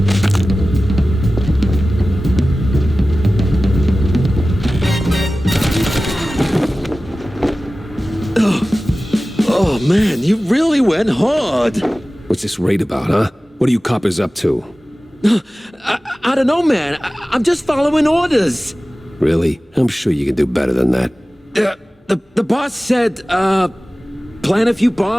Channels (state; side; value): normal; both; correlation 0.96